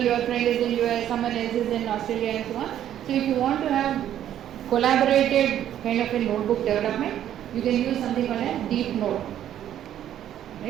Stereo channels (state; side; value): quieter; left; 11.0 dB